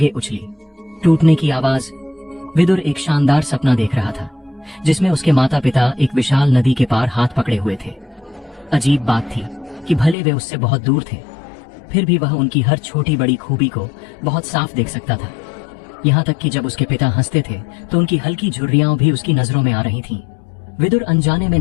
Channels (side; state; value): right; drops out; at 10.2 s